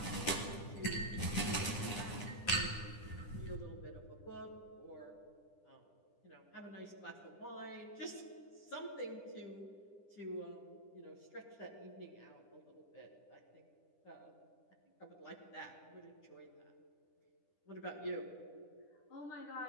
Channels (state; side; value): late; right; 10 ms